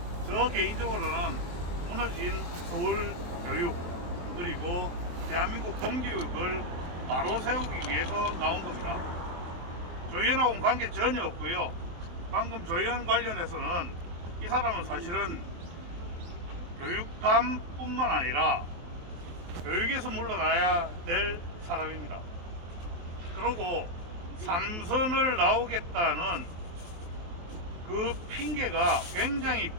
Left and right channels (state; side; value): late; left; 23 ms